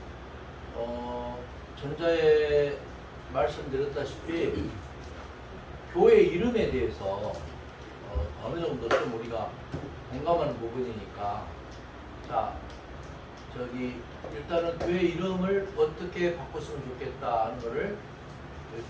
들어. 전자에 말씀드렸다시피 교회 이름에 대해서 어느 정도 좀 우리가 공감하는 부분이니까 자 저기 일단은 교회 이름을 어떻게 바꿨으면 좋겠다 하는 거를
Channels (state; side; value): identical; both; correlation 1.00